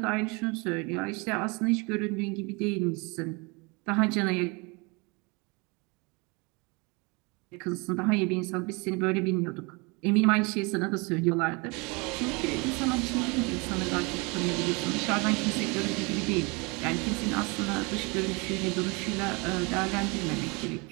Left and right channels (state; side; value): quieter; left; 28.8 dB